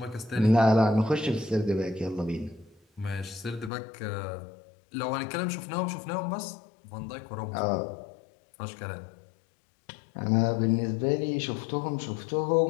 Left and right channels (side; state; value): right; drops out; at 3.7 s